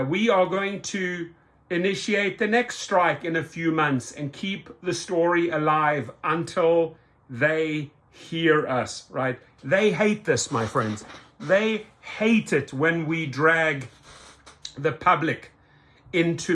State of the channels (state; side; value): identical; both; correlation 1.00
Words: We are going to initiate the next strike in a few months and keep the story alive until they hear us, right? They hate this, my friends. They hate it when we drag the public